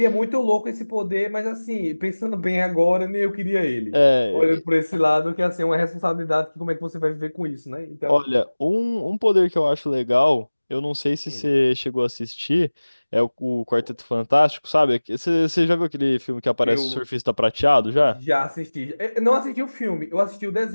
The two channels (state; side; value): inverted; both; correlation -1.00